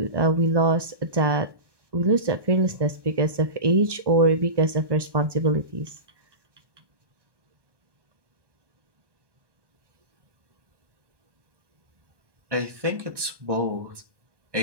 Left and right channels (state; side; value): late; left; 1.2 ms